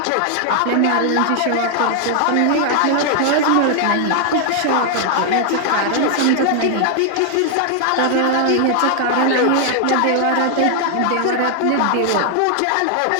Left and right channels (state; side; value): different; both; correlation 0.00